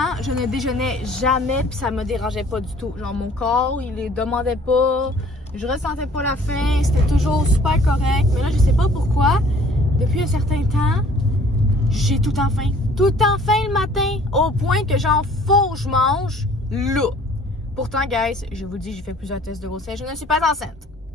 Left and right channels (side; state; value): both; normal; correlation 0.55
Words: je ne déjeunais jamais, puis ça me dérangeait pas du tout. Genre, mon corps, il les demandait pas. Je ressentais pas la faim. C'était toujours super correct. Mais là, je sais pas pourquoi. Depuis un certain temps, j'ai tout le temps faim. Tout le temps faim le matin. Au point que genre, faut que je mange là. Pourtant, guys, je vous dis, j'ai fait plusieurs tests de grossesse. Je ne suis pas enceinte.